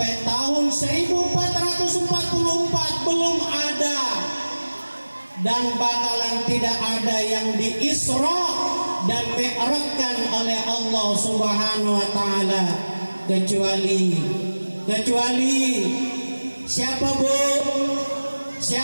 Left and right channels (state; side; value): inverted; both; correlation -1.00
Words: tahun 1444 belum ada dan bakalan tidak ada yang di Isra dan Mi'rajkan oleh Allah Subhanahu wa taala kecuali siapa Bu?